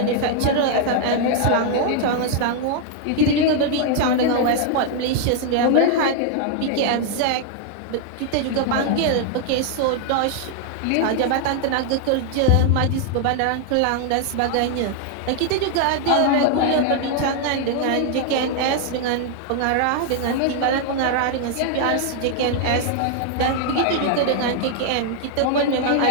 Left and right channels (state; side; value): different; both; correlation 0.00